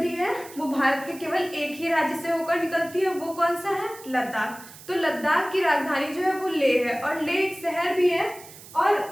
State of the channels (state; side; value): noise; right; hiss, 18 dB below the sound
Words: है वो भारत के केवल एक ही राज्य से होकर निकलती है, वो कौन सा है? लद्दाख। तो लद्दाख की राजधानी जो है वो लेह है, और लेह एक शहर भी है, और